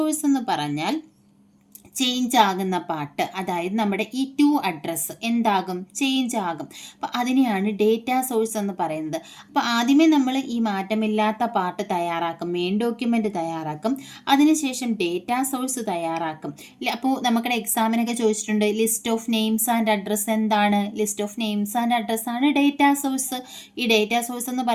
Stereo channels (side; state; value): both; identical; correlation 1.00